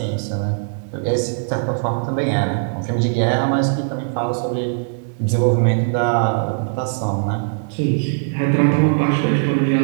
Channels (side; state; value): left; silent; digital silence